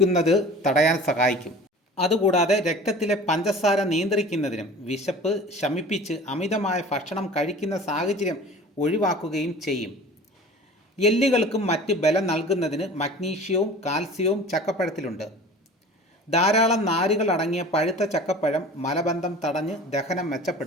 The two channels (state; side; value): normal; both; correlation 0.41